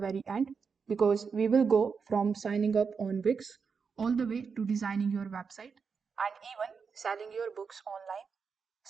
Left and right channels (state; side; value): quieter; left; 5.6 dB